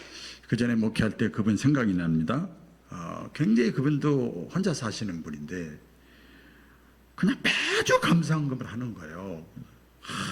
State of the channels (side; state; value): both; identical; correlation 1.00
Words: 전에 목회할 때 그분 생각이 납니다. 굉장히 그분도 혼자 사시는 분인데 그냥 매주 감사헌금을 하는 거예요.